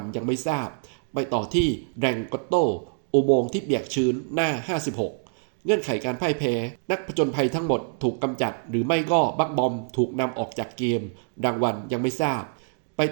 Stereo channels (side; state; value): left; silent; digital silence